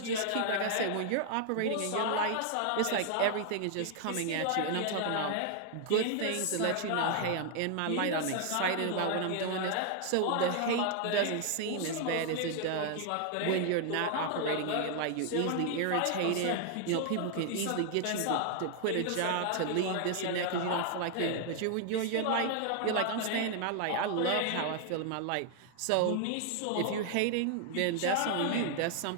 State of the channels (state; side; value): different; both; correlation 0.00